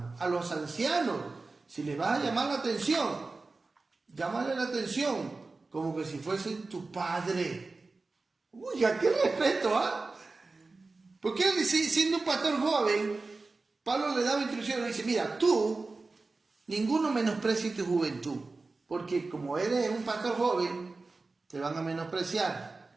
A los ancianos, si les vas a llamar la atención, llámale la atención como que si fuese tu padre. Uy, ¿a qué respeto, ah? Porque él, siendo un pastor joven, Pablo le daba instrucciones, le dice, mira, tú, ninguno menosprecie tu juventud, porque como eres un pastor joven, te van a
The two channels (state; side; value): quieter; left; 3.7 dB